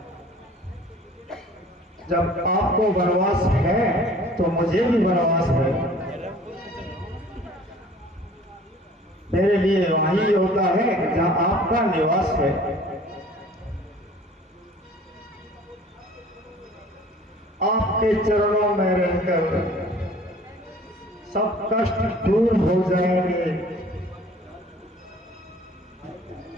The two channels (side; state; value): both; normal; correlation 0.50